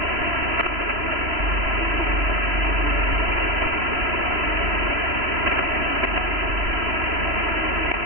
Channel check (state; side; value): late; left; 3.0 ms